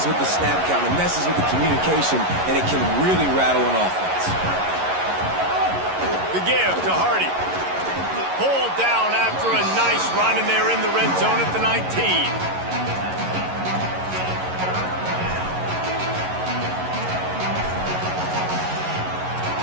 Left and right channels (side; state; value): left; late; 11 ms